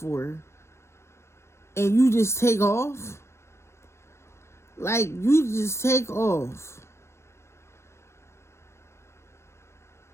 And you just take off? Like, you just take off.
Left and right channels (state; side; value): late; right; 0.13 ms